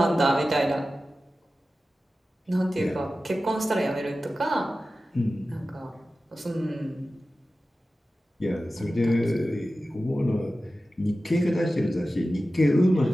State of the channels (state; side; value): normal; both; correlation 0.94